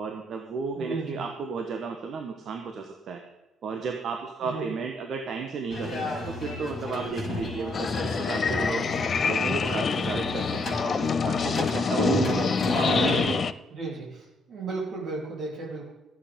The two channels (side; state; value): both; normal; correlation 0.72